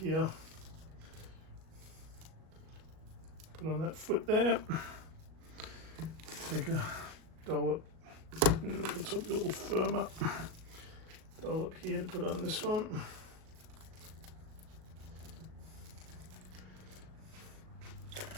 put on that foot there, take a dollop, let's hope a little firmer, dollop here to put on this one.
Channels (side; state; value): left; late; 38 ms